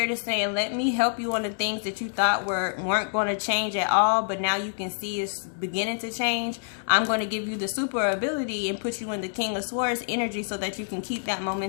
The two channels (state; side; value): silent; right; digital silence